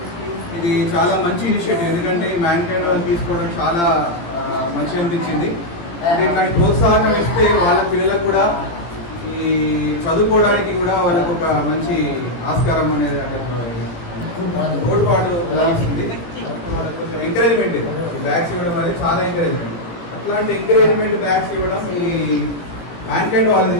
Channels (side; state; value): right; late; 17 ms